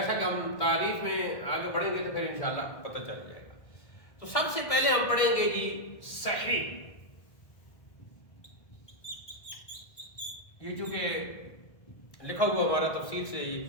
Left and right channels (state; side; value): late; right; 1.5 ms